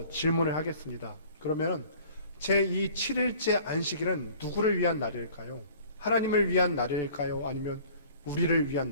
질문을 하겠습니다. 그러면 제 이 7일째 안식일은 누구를 위한 날일까요? 하나님을 위한 날일까요? 아니면 우리를 위한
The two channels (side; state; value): both; inverted; correlation -0.50